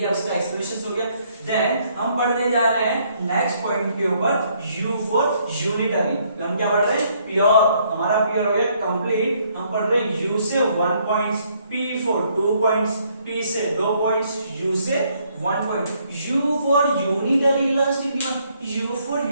उसका एक्सप्रेशन हो गया। देन हम पढ़ने जा रहे हैं नेक्स्ट पॉइंट के ऊपर, U फॉर यूनिटरी। हम क्या पढ़ रहे हैं? प्योर, हमारा प्योर हो गया कंप्लीट। हम पढ़ रहे हैं U से 1 points, P for 2 points, P से 2 पॉइंट्स, U से 1 point. U for unitary elastic demand, U for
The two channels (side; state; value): both; inverted; correlation -0.68